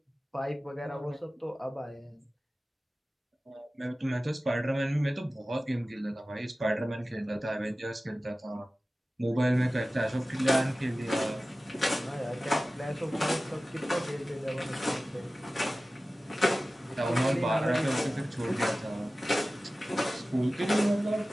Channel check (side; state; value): both; normal; correlation 0.96